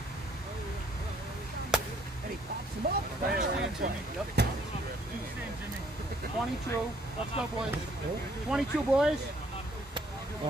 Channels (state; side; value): normal; both; correlation 0.64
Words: And he pops him up. 22. Let's go, boys. 22, boys. Want